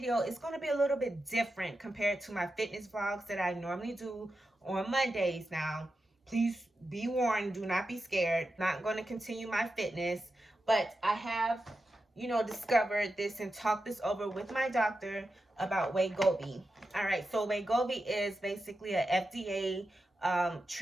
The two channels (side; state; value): both; normal; correlation 0.89